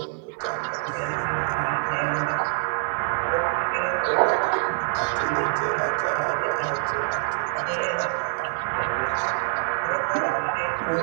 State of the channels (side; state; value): left; silent; 62 dB below the other